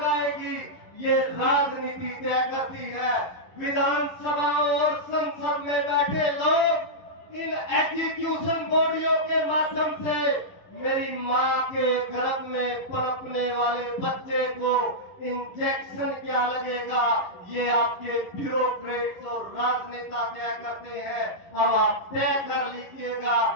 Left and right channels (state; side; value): late; right; 10 ms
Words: ये राजनीति तय करती है। विधानसभा और संसद में बैठे लोग इन एग्जीक्यूशन बॉडियों के माध्यम से मेरी मां के गर्भ में पनपने वाले बच्चे को इंजेक्शन क्या लगेगा, ये आपके ब्यूरोक्रेट्स और राजनेता तय करते हैं। अब आप तय कर लीजिएगा,